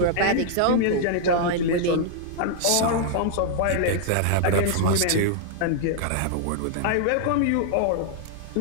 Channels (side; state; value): both; different; correlation -0.01